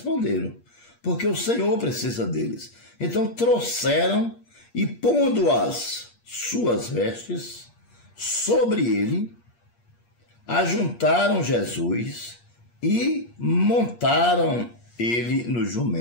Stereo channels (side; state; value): right; late; 8.5 ms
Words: porque o Senhor precisa deles. Então trouxeram e, pondo as suas vestes sobre ele, ajuntaram Jesus e montaram ele no